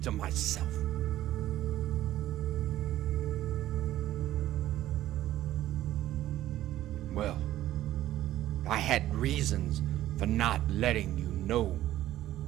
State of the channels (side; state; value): left; quieter; 13.8 dB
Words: to myself. Well, I had reasons for not letting you know.